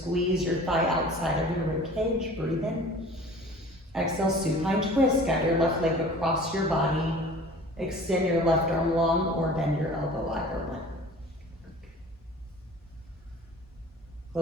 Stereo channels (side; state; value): both; normal; correlation 0.44